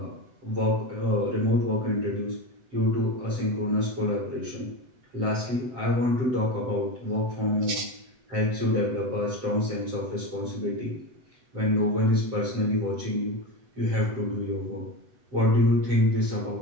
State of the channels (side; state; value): left; late; 8.2 ms